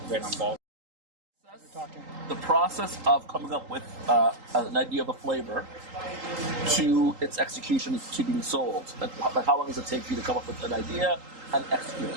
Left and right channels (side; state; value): left; late; 3.8 ms